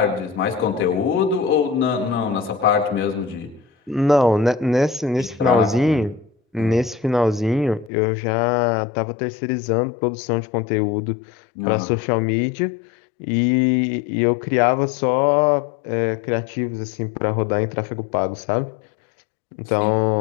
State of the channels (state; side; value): drops out; right; at 7.9 s